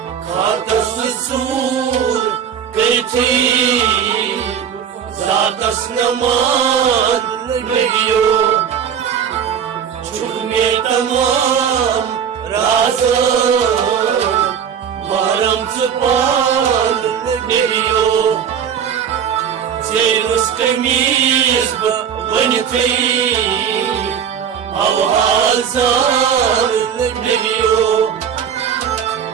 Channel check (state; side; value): quieter; left; 8.1 dB